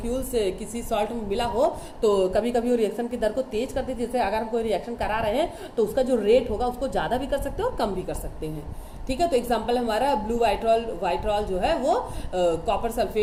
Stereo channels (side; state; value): both; identical; correlation 1.00